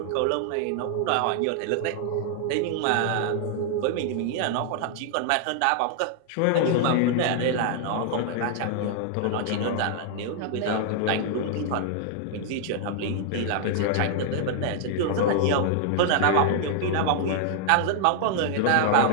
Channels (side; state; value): both; different; correlation 0.00